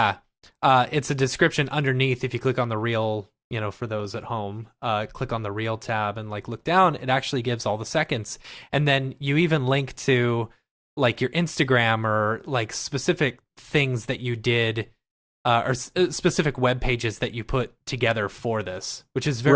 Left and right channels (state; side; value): identical; both; correlation 1.00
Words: Yeah. It's a description underneath. If you click on the reel, for those at home, click on the reel tab and look down, it actually gives all the seconds. And then you even link to your Instagram or specific things that you did, or specific web pages that you put together for this, which is